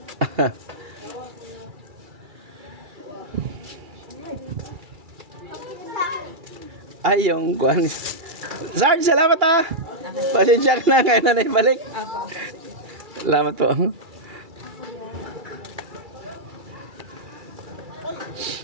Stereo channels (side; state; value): left; late; 2.3 ms